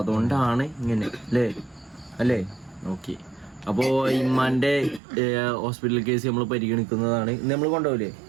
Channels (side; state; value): left; drops out; at 5.0 s